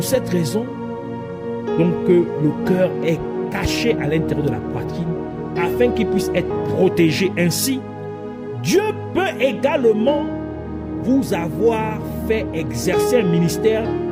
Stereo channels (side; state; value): both; identical; correlation 1.00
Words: cette raison donc, que le cœur est caché à l'intérieur de la poitrine afin qu'il puisse être protégé. Ainsi, Dieu peut également vous avoir fait exercer un ministère